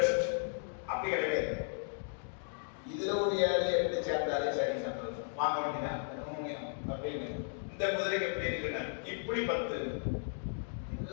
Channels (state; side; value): silent; right; digital silence